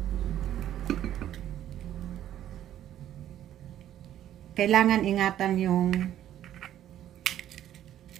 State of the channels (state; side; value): quieter; left; 11.6 dB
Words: Kailangan ingatan yung